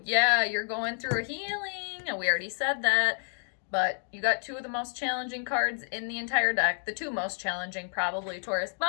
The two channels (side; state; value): right; silent; 58 dB below the other